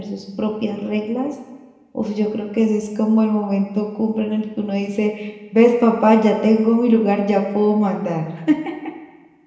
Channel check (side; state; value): both; identical; correlation 1.00